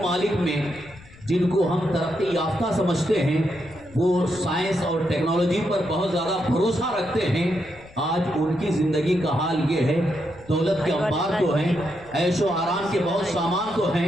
میں جن کو ہم ترقی یافتہ سمجھتے ہیں، وہ سائنس اور ٹیکنالوجی پر بہت زیادہ بھروسہ رکھتے ہیں، آج ان کی زندگی کا حال یہ ہے، دولت کے انبار تو ہیں، عیش و آرام کے بہت سامان تو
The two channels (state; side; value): noise; left; rumble, 23 dB below the sound